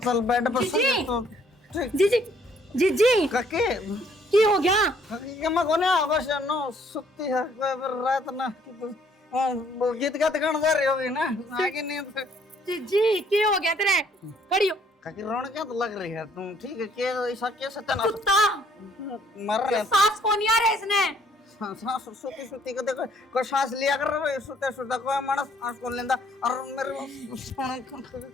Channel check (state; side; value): normal; both; correlation 0.63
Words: चल बेड पर जी जी जी जी काके की हो गया? काके मैं कोने बस नो सुत्ती है फिर रात ना गीत गाते गाना जा रही होगी ना आगे नहीं तो जी जी की हो गया तेरे? खड़ी हो। काकी रोन क्या तो लग रही है तुम ठीक है क्या ऐसा क्या सत्यानाश कुत्ता मर रहे सांस कौन नहीं आ रहा है इसने? सांस सुती सुती को देखो कोई सांस लिया कर रहे सुते सुते कोई मानस सांस को लेंदा और मेरे सोने